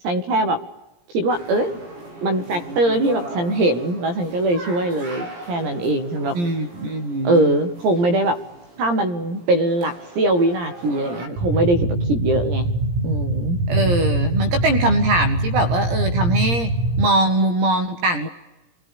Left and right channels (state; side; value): late; left; 17 ms